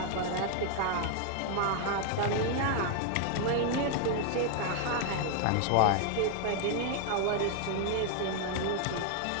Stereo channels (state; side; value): different; both; correlation 0.00